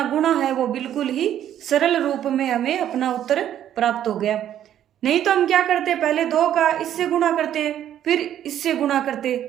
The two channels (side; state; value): left; quieter; 10.9 dB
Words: गुणा है वो बिल्कुल ही सरल रूप में हमें अपना उत्तर प्राप्त हो गया। नहीं तो हम क्या करते, पहले 2 का इससे गुणा करते फिर इससे गुणा करते,